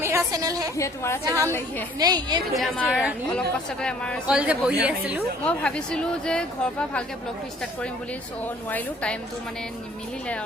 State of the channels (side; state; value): both; normal; correlation 0.56